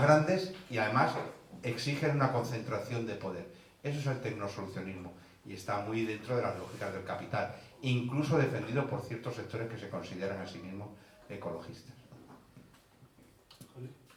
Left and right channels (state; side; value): identical; both; correlation 1.00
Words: grandes y además exigen una concentración de poder. Eso es el tecnosolucionismo y está muy dentro de las lógicas del capital, incluso defendido por ciertos sectores que se consideran a sí mismos ecologistas.